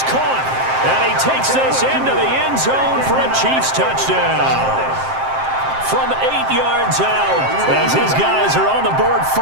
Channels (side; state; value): left; late; 7.6 ms